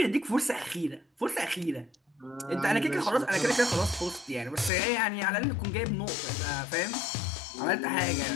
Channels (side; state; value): right; drops out; at 4.7 s